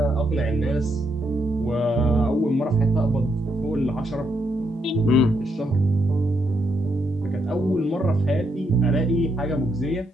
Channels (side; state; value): both; normal; correlation 0.78